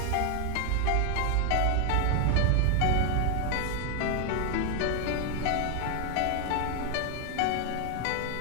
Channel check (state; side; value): different; both; correlation 0.00